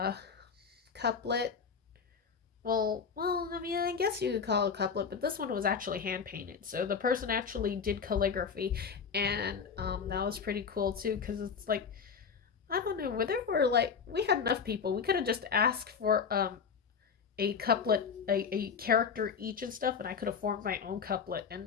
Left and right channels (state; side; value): quieter; right; 6.2 dB